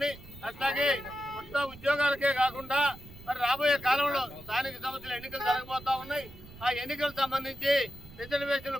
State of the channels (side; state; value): right; noise; rumble, 18 dB below the sound